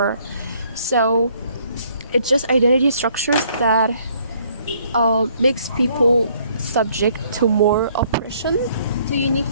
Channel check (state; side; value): inverted; both; correlation -0.64